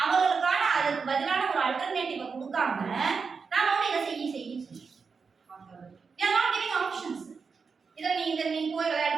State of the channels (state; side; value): quieter; left; 5.3 dB